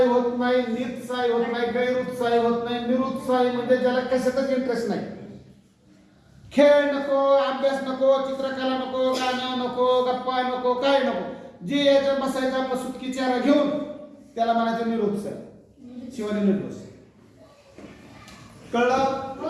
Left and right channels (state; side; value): identical; both; correlation 1.00